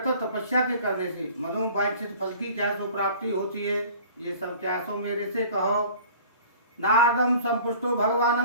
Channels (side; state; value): both; inverted; correlation -0.47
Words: तपस्या के करने से मनोवांछित फल की क्या सो प्राप्ति होती है, ये सब क्या सो मेरे से कहो। नारदम संपुष्टो